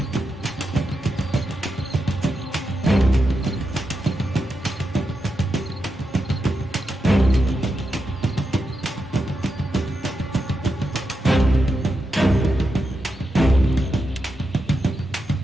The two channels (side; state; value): both; normal; correlation 0.87